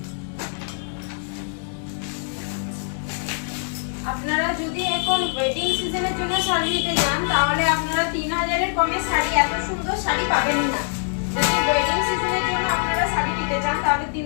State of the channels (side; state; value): right; silent; digital silence